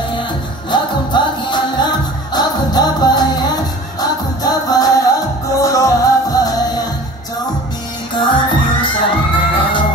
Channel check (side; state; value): both; normal; correlation 0.43